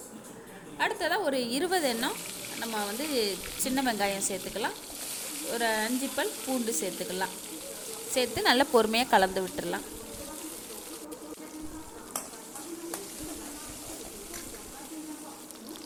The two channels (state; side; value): identical; both; correlation 1.00